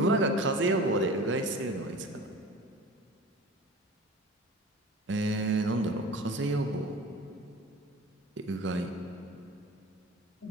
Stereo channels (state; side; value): normal; both; correlation 0.39